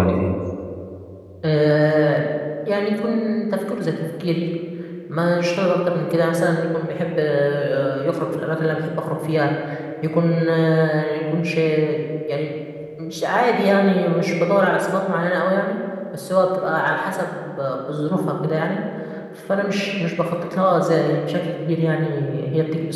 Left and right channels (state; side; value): identical; both; correlation 1.00